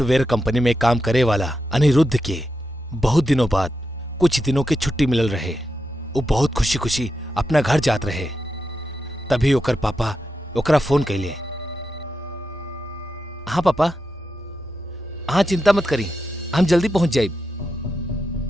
company में काम करे वाला अनिरुद्ध के बहुत दिनों बाद कुछ दिनों की छुट्टी मिलल रहे। वो बहुत खुशी खुशी अपना घर जात रहे। तभी ओकर पापा ओकरा फोन कैले। हाँ पापा, हाँ चिंता मत करी, हम जल्दी पहुंच जाए।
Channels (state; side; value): normal; both; correlation 0.87